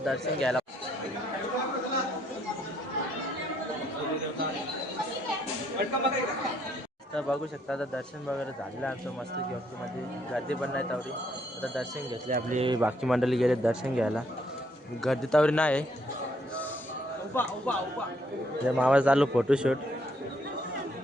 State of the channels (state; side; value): normal; both; correlation 0.70